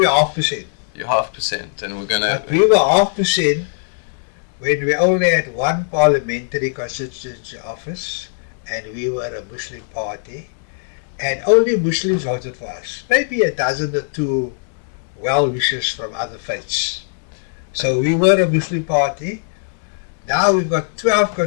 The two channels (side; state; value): right; silent; digital silence